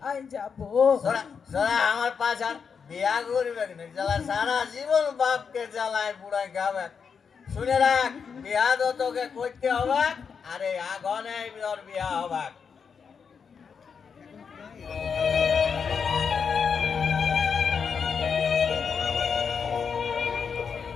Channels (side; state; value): right; quieter; 6.2 dB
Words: যাব। সোরা সোরা আমার পাশার বিয়া করবে না, জ্বালা সারা জীবন বাপকে জ্বালায় বুড়ায় খাবে। শুনে রাখ, বিয়া তো তোকে করতে হবে, আরে আগুনে তোর বিয়া হবে।